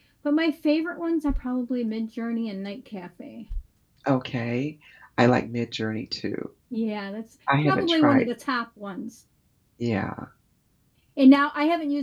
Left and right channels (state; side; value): identical; both; correlation 1.00